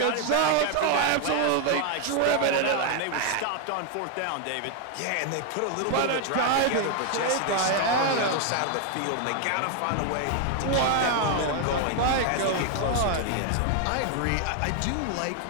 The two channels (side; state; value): both; different; correlation 0.01